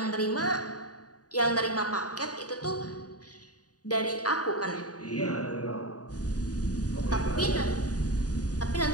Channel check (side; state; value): right; late; 0.68 ms